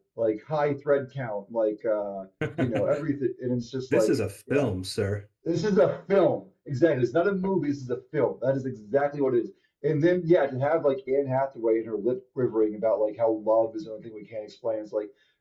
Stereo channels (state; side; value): identical; both; correlation 1.00